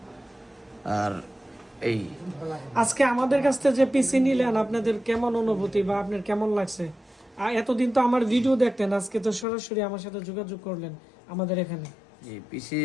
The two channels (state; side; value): drops out; right; at 9.5 s